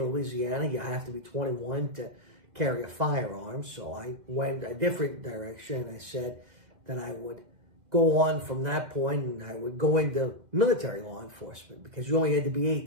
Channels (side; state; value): left; late; 2.1 ms